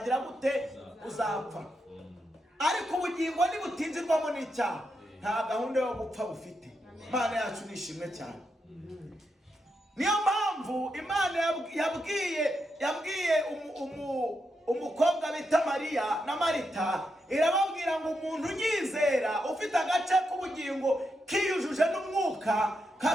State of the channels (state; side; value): normal; both; correlation 0.84